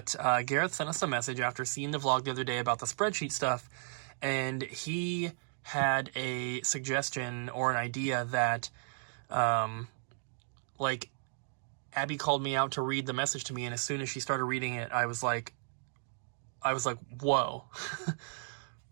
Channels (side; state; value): left; silent; digital silence